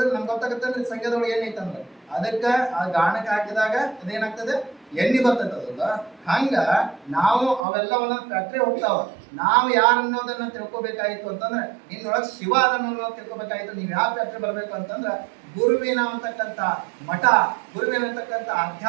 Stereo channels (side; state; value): left; drops out; at 7.7 s